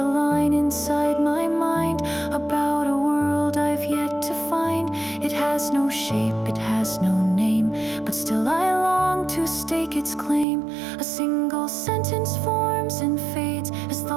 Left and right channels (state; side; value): drops out; left; at 10.5 s